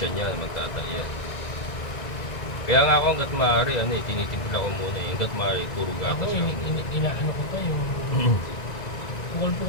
niya, magtatay yan. Kaya nga ako hanggat maaari, tinitimpla ko muna eh. Hanggat maaari, puro gatas Ako, lang. inaano ko pa yung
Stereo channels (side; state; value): right; late; 1.9 ms